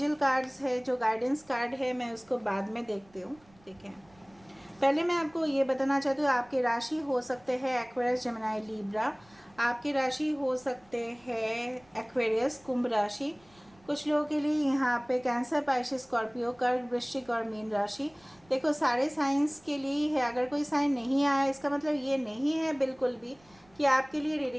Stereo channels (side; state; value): right; noise; rumble, 30 dB below the sound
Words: कार्ड्स है, जो गाइडेंस कार्ड है, मैं उसको बाद में देखती हूँ। ठीक है, पहले मैं आपको ये बताना चाहती हूँ, आपके राशि हो सकते हैं एक्वेरियस, जेमिनी, लीब्रा। आपकी राशि हो सकते हैं एक्वेरियस, कुंभ राशि। कुछ लोगों के लिए यहाँ पे कैंसर, पाइसेस, स्कॉर्पियो, कर्क, वृश्चिक और मीन राशि। देखो सारे साइंस के लिए है, अगर कोई साइन नहीं आया इसका मतलब ये नहीं है बिल्कुल भी कि आपके लिए